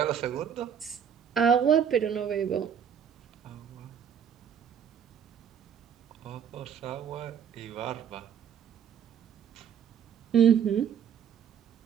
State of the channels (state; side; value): quieter; left; 8.2 dB